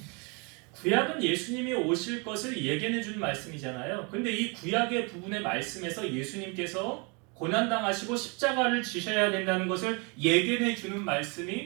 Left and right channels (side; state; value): left; quieter; 31.8 dB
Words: 구약은 예수님이 오실 것을 예견해 준 말씀이잖아요. 근데 이 구약의 부분의 말씀에서 예수님께서 고난당하시고 십자가를 지셔야 된다는 것을 예견해 주는